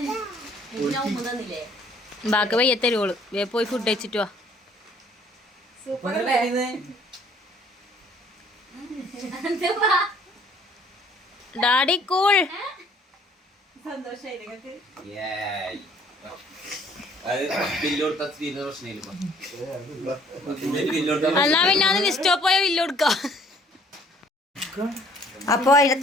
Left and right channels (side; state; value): both; normal; correlation 0.59